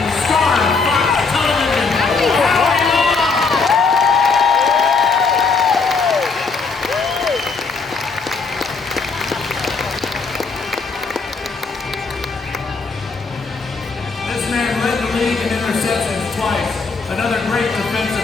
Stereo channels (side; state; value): right; quieter; 4.6 dB